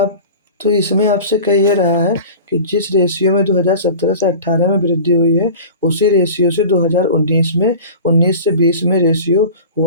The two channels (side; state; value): both; inverted; correlation -0.37